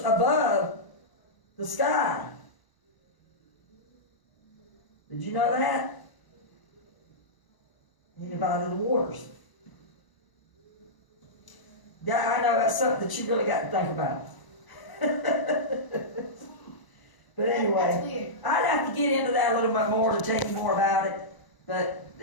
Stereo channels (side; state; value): right; late; 1.0 ms